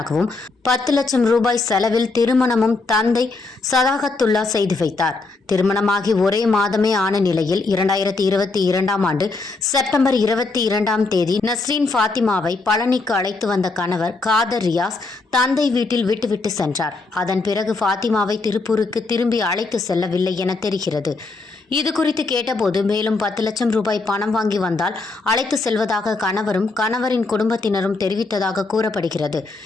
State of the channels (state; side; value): quieter; right; 3.6 dB